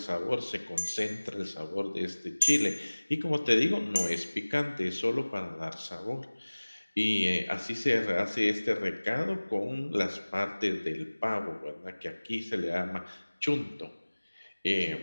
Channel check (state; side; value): inverted; both; correlation -1.00